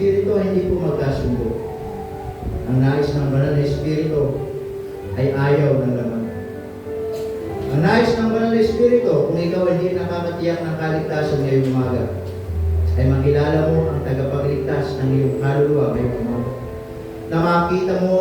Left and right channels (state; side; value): identical; both; correlation 1.00